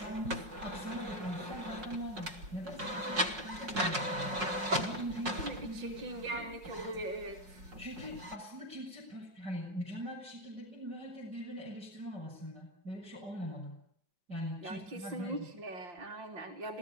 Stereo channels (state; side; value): late; left; 5.5 ms